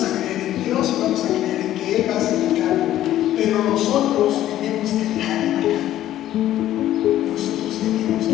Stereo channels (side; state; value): right; quieter; 13.0 dB